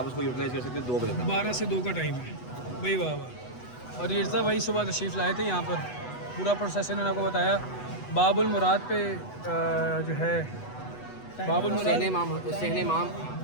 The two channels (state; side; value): late; right; 8.1 ms